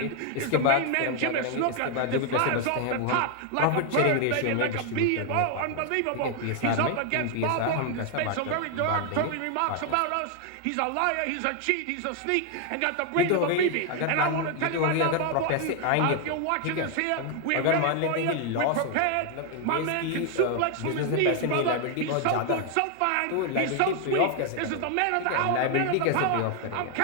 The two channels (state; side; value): different; both; correlation 0.00